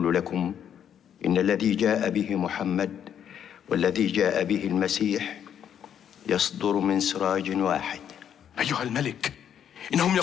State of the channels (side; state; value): right; quieter; 9.1 dB